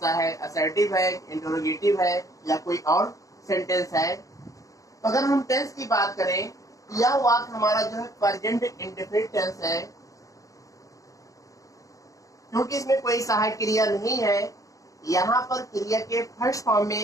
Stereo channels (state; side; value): late; right; 0.16 ms